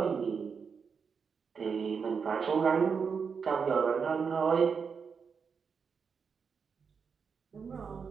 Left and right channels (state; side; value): quieter; left; 5.9 dB